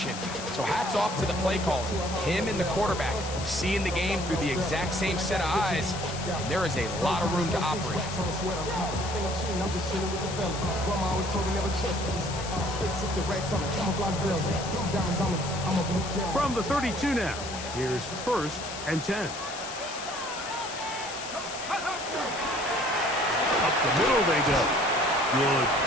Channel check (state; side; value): noise; left; hiss, 9 dB below the sound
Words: So hats off to the play caller. Him and the quarterback seeing the game through the exact same set of eyes, and there is a lot of room to operate. From the 32 now, here's 1st and 10. Up the middle they go. Good